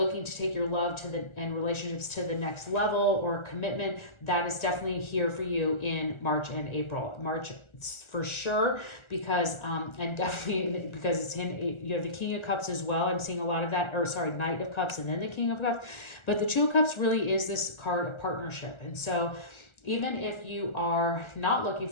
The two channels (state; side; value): late; right; 1.3 ms